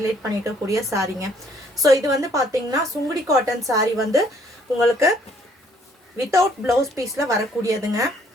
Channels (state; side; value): normal; both; correlation 0.63